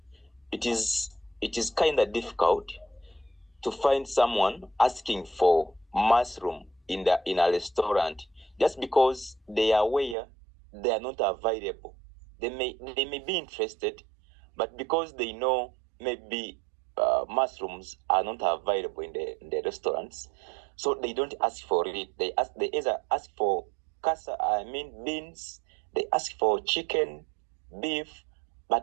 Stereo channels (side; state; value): left; drops out; at 10.2 s